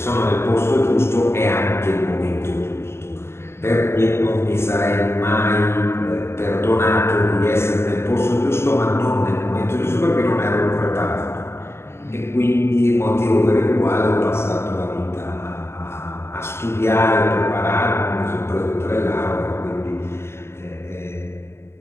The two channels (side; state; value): right; late; 0.12 ms